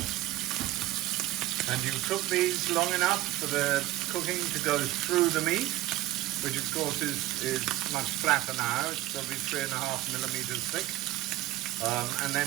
And you cook these long enough for the cooking to go through the meat, which of course is much flatter now. It's probably 3.5 millimeters thick. And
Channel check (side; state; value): left; quieter; 16.3 dB